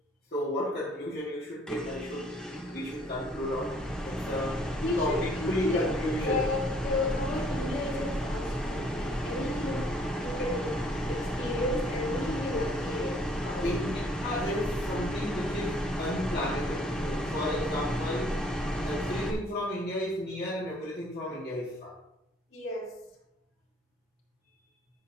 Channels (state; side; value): normal; both; correlation 0.60